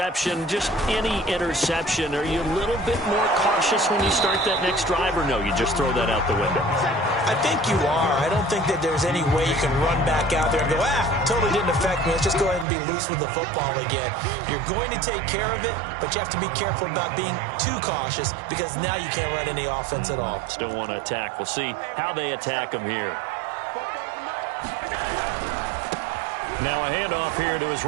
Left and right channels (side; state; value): left; drops out; at 12.7 s